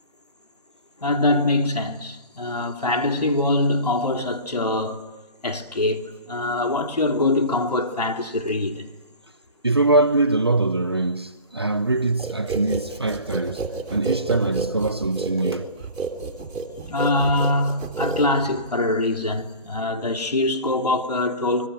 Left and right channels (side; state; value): both; inverted; correlation -0.38